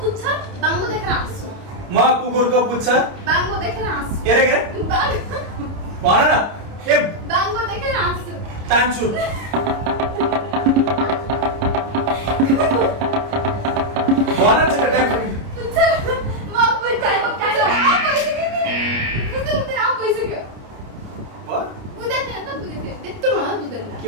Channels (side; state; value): left; late; 29 ms